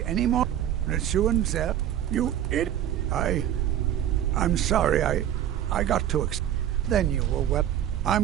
any more. Neshuan said, you idiot. I'm sorry, I got too excited. Then you were well.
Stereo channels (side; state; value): left; quieter; 11.0 dB